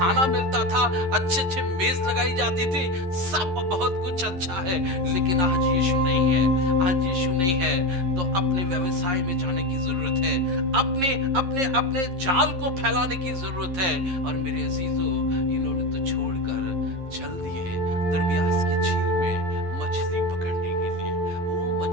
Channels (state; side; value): late; left; 11 ms